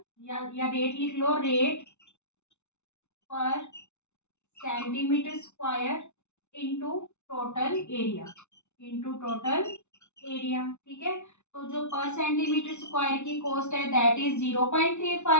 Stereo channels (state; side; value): late; right; 0.82 ms